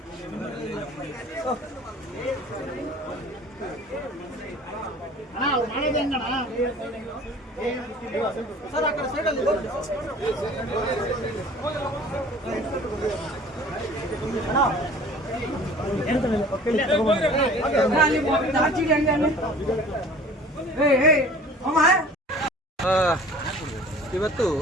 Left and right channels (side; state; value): both; normal; correlation 0.47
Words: ಸರ್ ಆ ಕಡೆ ಸೈಡಲ್ಲಿ ಇವತ್ತು